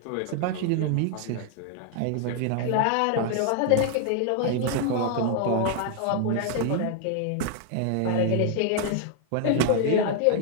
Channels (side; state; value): both; different; correlation 0.00